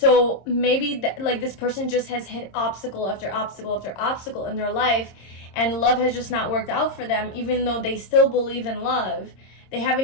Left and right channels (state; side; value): late; right; 26 ms